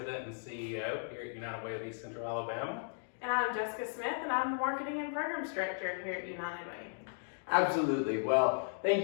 and CEO here at United Way of East Central Alabama. And I'm Jessica Smith, and I'm the marketing and programs director here at United Way. Absolutely. Well, thank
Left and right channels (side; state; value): right; silent; digital silence